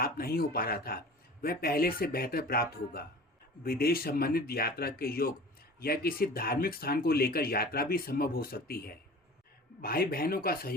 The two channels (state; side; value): normal; both; correlation 0.40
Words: नहीं हो पा रहा था, वह पहले से बेहतर प्राप्त होगा। विदेश संबंधित यात्रा के योग या किसी धार्मिक स्थान को लेकर यात्रा भी संभव हो सकती है। भाई बहनों का